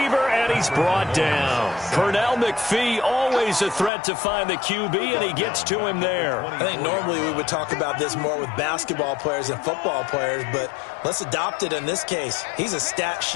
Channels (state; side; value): drops out; right; at 3.9 s